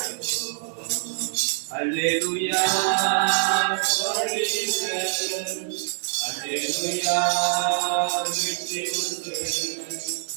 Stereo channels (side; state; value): left; silent; digital silence